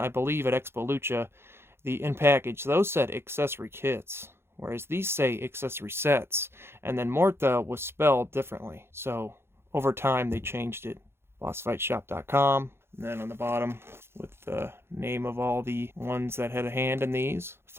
believe, at Expo Lucha, the in-package, those said Accessory Kits, whereas these say Accessory Sets, and then Muerte was spelled differently. So over time, they changed it. BossFightShop.com, and then on the bottom, with the name of all the ones that had a hand in these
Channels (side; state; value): left; late; 0.12 ms